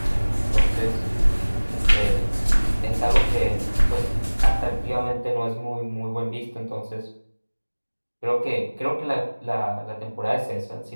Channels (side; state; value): both; inverted; correlation -1.00